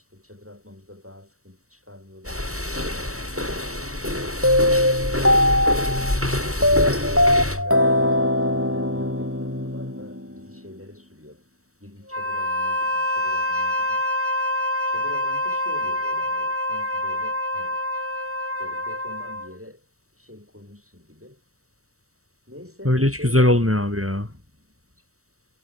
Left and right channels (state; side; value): late; left; 0.65 ms